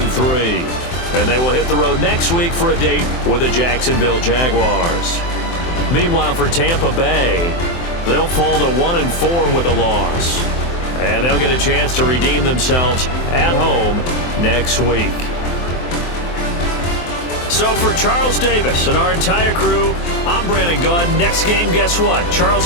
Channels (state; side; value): late; right; 23 ms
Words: And they will hit the road next week for a date with the Jacksonville Jaguars. Meanwhile, for Tampa Bay, they'll fall to 1-4 with a loss. And they'll get a chance to redeem themselves at home next week. So for Charles Davis and our entire crew, I'm Brandon Gaud. Next game, guess what?